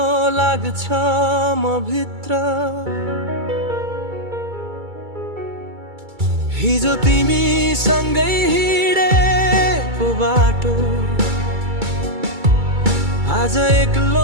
लाग्छ म भित्र। हिजो तिमी सँगै हिँडेको बाटो आज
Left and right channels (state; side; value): late; left; 2.3 ms